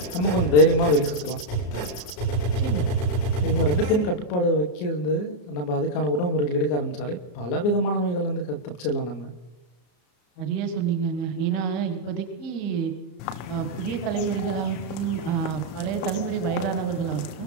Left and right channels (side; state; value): right; late; 34 ms